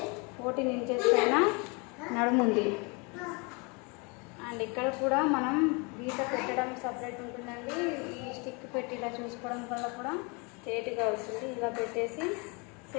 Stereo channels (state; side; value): quieter; right; 30.8 dB